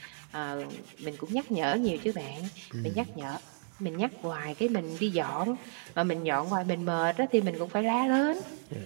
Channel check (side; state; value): left; silent; 56 dB below the other